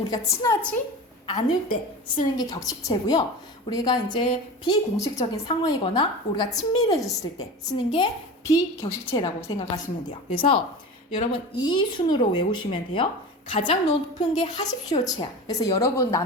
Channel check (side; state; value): both; normal; correlation 0.31